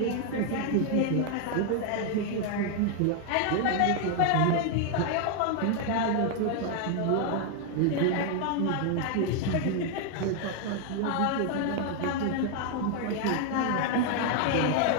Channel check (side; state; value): both; different; correlation 0.00